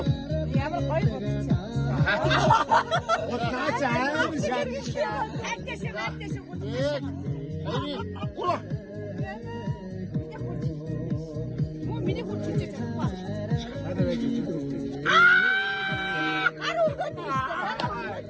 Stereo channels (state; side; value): identical; both; correlation 1.00